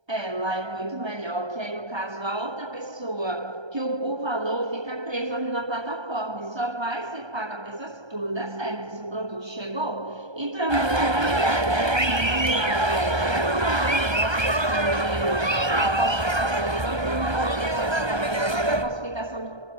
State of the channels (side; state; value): left; late; 1.3 ms